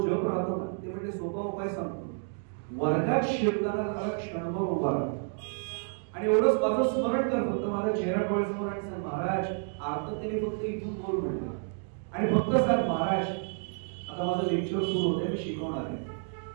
जप राहतो ना, ते म्हणजे सोपा उपाय सांगतो. वर्गात शिरताना त्याला क्षणभर उभा राहतो आणि एवढंच माझं स्मरण कर, फक्त माझ्या चेहरा डोळ्यासमोर आणि सांग महाराज आर्ततेने फक्त इथून बोल म्हणलं. आणि फक्त सांग महाराज आता माझं लेक्चर सुरू होते, मी शिकवणार आहे.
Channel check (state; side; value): silent; left; 58 dB below the other